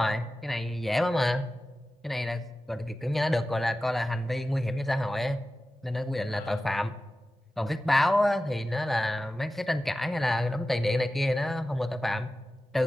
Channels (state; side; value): normal; both; correlation 0.94